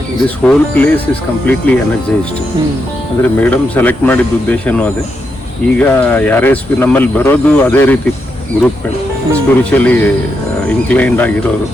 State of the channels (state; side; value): normal; both; correlation 0.83